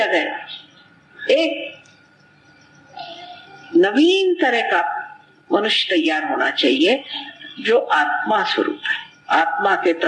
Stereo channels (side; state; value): both; identical; correlation 1.00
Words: एक नवीन तरह का मनुष्य तैयार होना चाहिए जो आत्मा स्वरूप है, आत्मा के